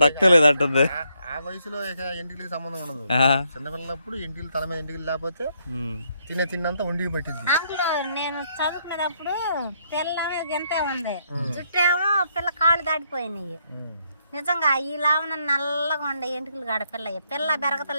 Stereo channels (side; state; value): both; inverted; correlation -0.74